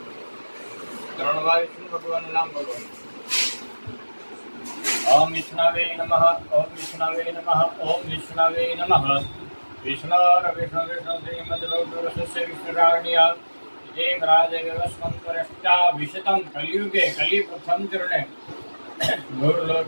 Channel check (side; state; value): both; inverted; correlation -1.00